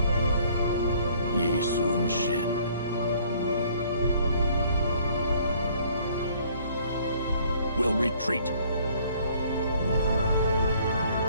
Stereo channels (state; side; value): inverted; both; correlation -0.59